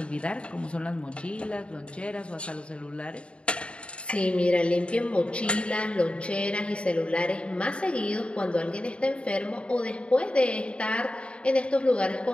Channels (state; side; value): late; right; 0.058 ms